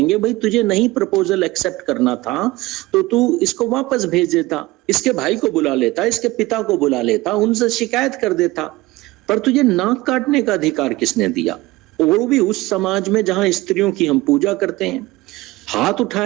भाई तुझे नहीं प्रपोजल एक्सेप्ट करना था तो तू इसको वापस भेज देता, इसके भाई को बुला लेता, इसके पिता को बुला लेता, उनसे शिकायत कर देता, पर तुझे नाक काटने का अधिकार किसने दिया? वो भी उस समाज में जहां स्त्रियों की हम पूजा करते हैं। हाथ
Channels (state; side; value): quieter; left; 19.8 dB